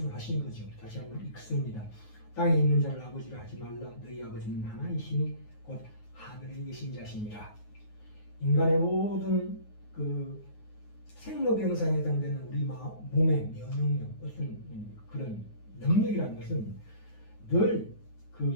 하시는 거죠. 다시 한번 읽습니다. 땅에 있는 자를 아버지라 하지 말라. 너희 아버지는 하나이시니 곧 하늘에 계신 자시니라. 인간의 모든 그 생로병사에 해당되는 우리 몸의 면역력, 어떤 그런 능력이라는 것은 늘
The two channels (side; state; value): right; late; 9.4 ms